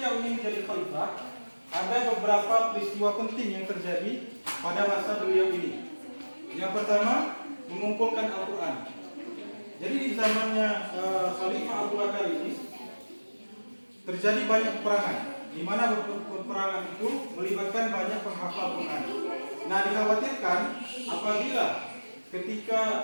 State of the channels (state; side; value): inverted; both; correlation -1.00